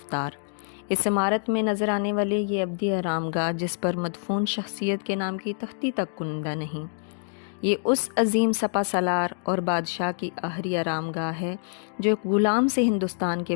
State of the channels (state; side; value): silent; right; digital silence